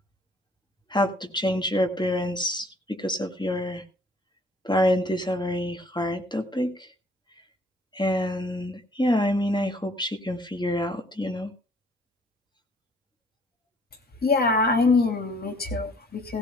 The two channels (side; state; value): both; normal; correlation 0.60